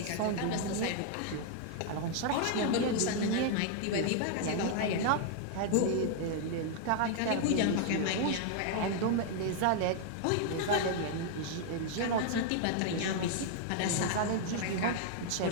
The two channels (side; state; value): both; different; correlation 0.00